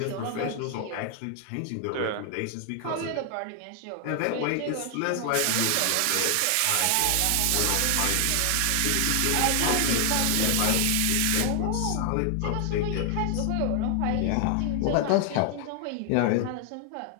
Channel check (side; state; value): both; different; correlation 0.00